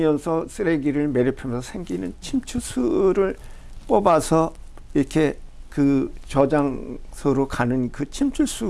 쓰레기를 매립하면서 생기는 침출수를 뽑아서 이렇게 그 저장소로 가는 그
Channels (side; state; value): both; identical; correlation 1.00